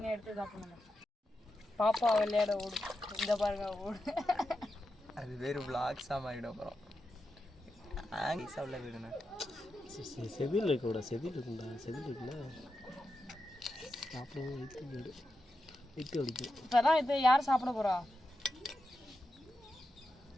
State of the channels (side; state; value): both; normal; correlation 0.89